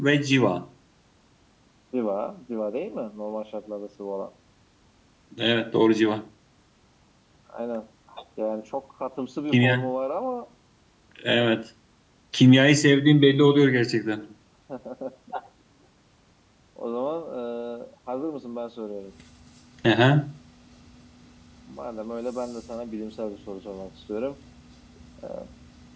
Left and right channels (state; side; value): identical; both; correlation 1.00